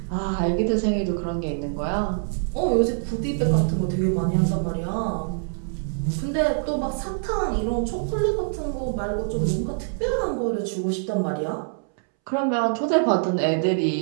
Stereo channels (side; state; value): left; silent; 62 dB below the other